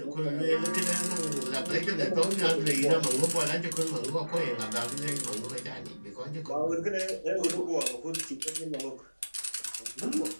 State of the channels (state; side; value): inverted; both; correlation -1.00